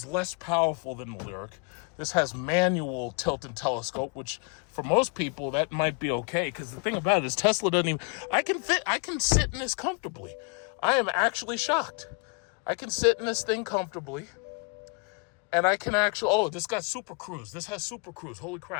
less powerful than the Lyriq. This has manual tilt and telescope, which for most people, that might be okay. Because the thing about it is Tesla doesn't even... I can sit in this comfortably. I am actually shocked. I can sit in this thing comfortably. And I can actually... Oh, this got Super Cruise. This has Super Cruise. Holy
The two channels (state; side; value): quieter; right; 34.5 dB